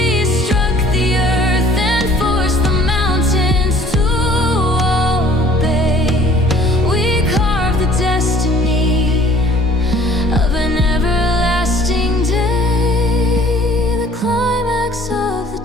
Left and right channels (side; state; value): both; normal; correlation 0.53